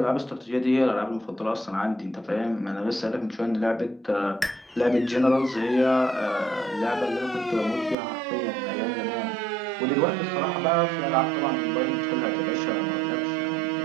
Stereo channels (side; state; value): left; drops out; at 8.0 s